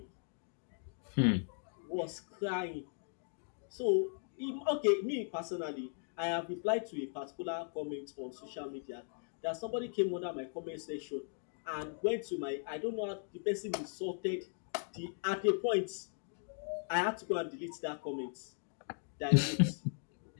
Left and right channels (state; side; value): silent; right; 52 dB below the other